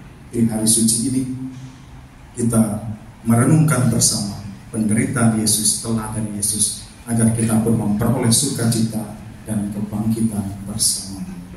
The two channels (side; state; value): both; identical; correlation 1.00